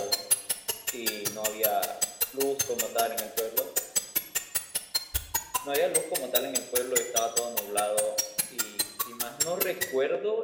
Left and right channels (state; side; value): identical; both; correlation 1.00